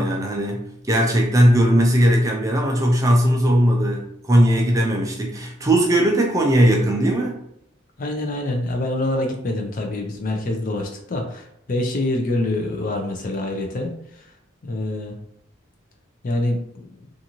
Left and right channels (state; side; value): normal; both; correlation 0.78